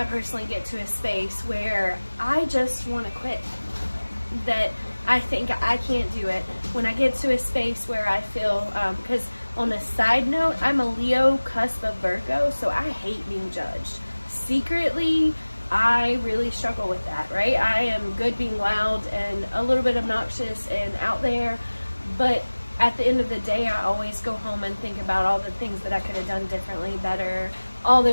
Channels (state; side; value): inverted; both; correlation -1.00